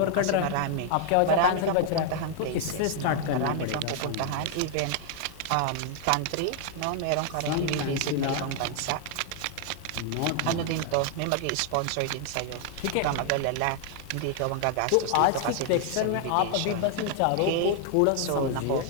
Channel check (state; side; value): different; both; correlation 0.00